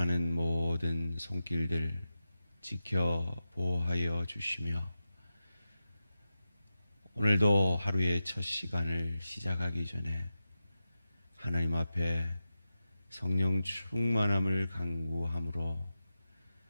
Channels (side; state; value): both; inverted; correlation -0.92